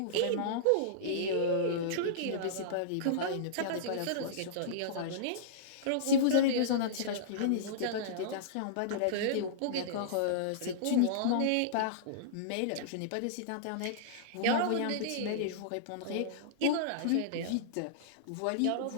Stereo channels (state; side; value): different; both; correlation -0.03